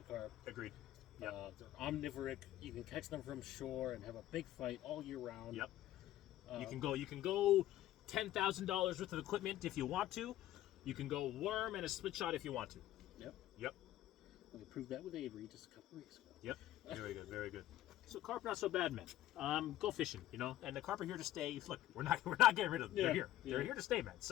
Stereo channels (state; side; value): quieter; right; 13.8 dB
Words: carp. Agreed. They're omnivoric. You can catch them from shore and have a big fight all year round. Yep. You can go $10,000 worth of equipment if you want to. You can go worm and a split shot if you want to. Yep. We proved that with Avery just a couple weeks ago. Yep. Very good. So carp not so bad, man. Go fishing, and the carp are here to stay. Look, we're not getting rid of them. Yeah. They're here. They're here to stay, man.